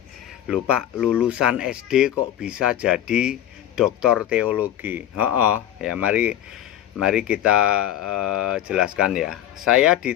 Lupa, lulusan SD kok bisa jadi doktor teologi? Ya mari kita jelaskan ya. Saya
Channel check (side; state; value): right; quieter; 11.6 dB